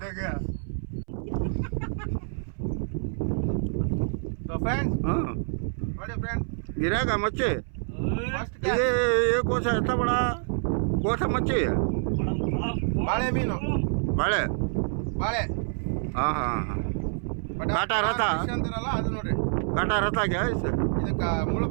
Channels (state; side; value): silent; left; 60 dB below the other